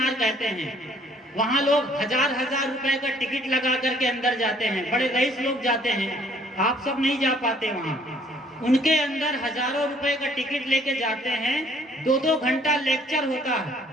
कहते हैं, वहां लोग हजार रुपए का टिकट लगा करके अंदर जाते हैं, बड़े रईस लोग जाते हैं, आप सब नहीं जा पाते वहां। उनके अंदर हजारों रुपए का टिकट लेके जाते हैं, 2-2 घंटा लेक्चर होता है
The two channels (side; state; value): both; normal; correlation 0.60